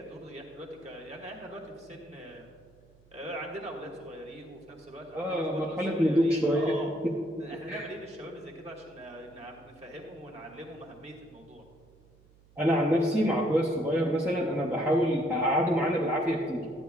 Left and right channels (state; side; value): noise; right; hum, 28 dB below the sound